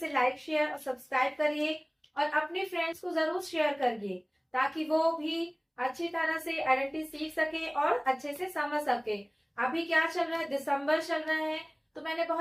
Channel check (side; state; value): both; identical; correlation 1.00